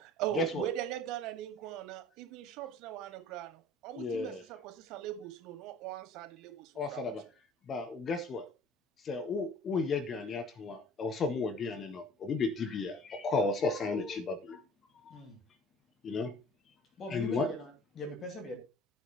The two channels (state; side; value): normal; both; correlation 0.48